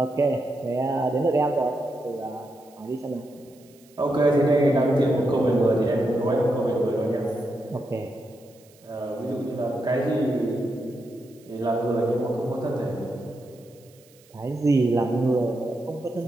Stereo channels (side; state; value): right; noise; hiss, 29 dB below the sound